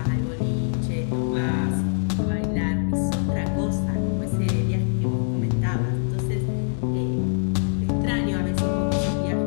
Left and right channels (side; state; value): right; silent; digital silence